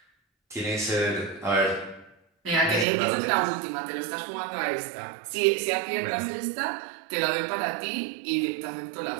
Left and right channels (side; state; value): left; drops out; at 2.9 s